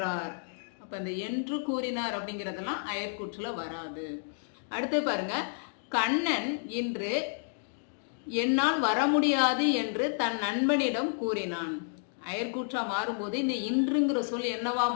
அப்ப இந்த என்று கூறினார் அப்படிங்கிறதெல்லாம் அயற்கூற்றுல வராது. அடுத்து பாருங்க, கண்ணன் இன்று என்னால் வர முடியாது என்று தன் நண்பனிடம் கூறினான். அயற்கூற்றா மாறும்போது இந்த இன்றுங்கிற சொல் என்னவா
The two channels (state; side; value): silent; right; digital silence